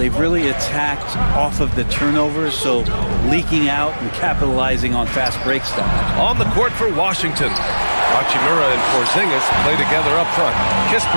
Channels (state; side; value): inverted; both; correlation -1.00